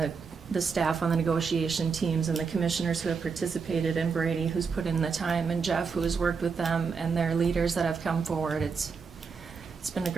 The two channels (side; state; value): left; quieter; 5.4 dB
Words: the staff on the negotiation teams and the commissioners who have participated, and Brady who's put in the time, and Jeff who has worked with them, and their leaders that have come forward. It's been a